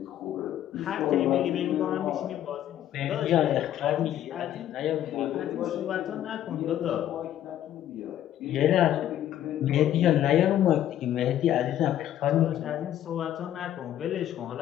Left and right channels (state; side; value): quieter; right; 11.6 dB